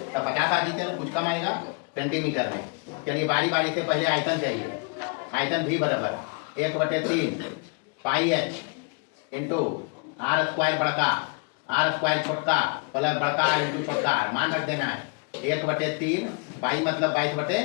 तो 50 आ जीते कुछ कम आएगा सेंटीमीटर में। चलिए बारी बारी से पहले आयतन चाहिए। आयतन भी बराबर 1/3 pi H into are square बड़का, आर स्क्वायर छोटका प्लस बड़का आर इंटू छोटका आर। मान रख देना है 1/3 पाई मतलब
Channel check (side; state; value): right; quieter; 36.6 dB